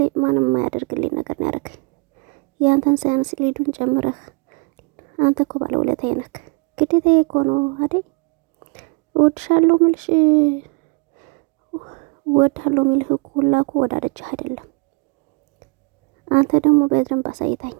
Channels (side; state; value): left; quieter; 32.5 dB